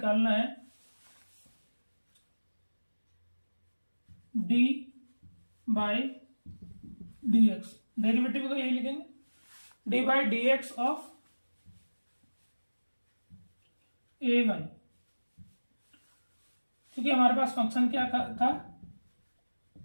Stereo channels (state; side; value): inverted; both; correlation -1.00